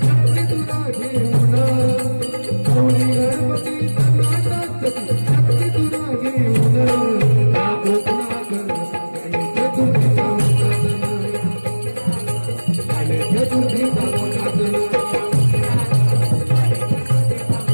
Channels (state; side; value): inverted; both; correlation -1.00